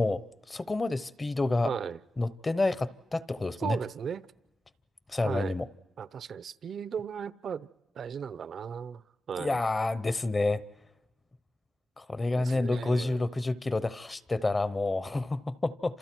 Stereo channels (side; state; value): both; normal; correlation 0.94